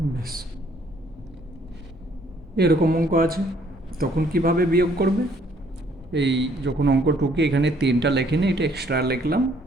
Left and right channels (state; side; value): normal; both; correlation 0.64